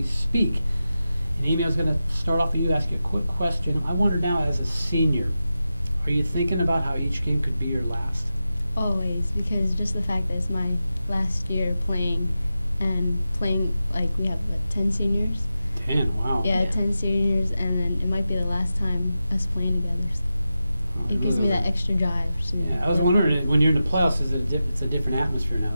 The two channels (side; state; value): both; inverted; correlation -0.92